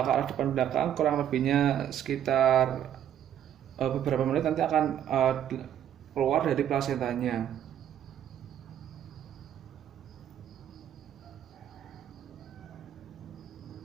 kurang lebihnya sekitar beberapa menit, nanti akan keluar dari plasentanya.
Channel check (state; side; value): quieter; left; 10.3 dB